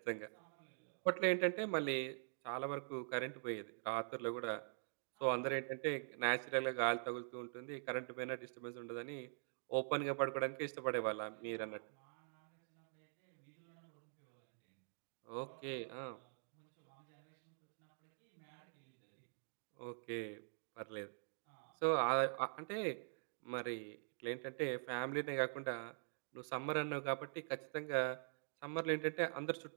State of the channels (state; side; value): silent; left; digital silence